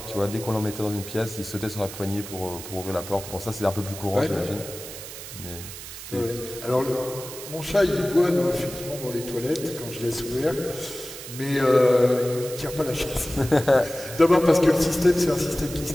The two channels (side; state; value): right; noise; hiss, 12 dB below the sound